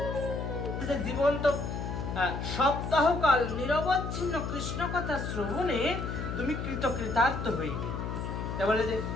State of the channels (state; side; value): noise; left; hum, 4 dB below the sound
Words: জীবন তো সপ্তাহকাল নিরবচ্ছিন্ন কৃষ্ণ কথা শ্রবণে তুমি কৃতকৃতার্থ হইবে। তা বলে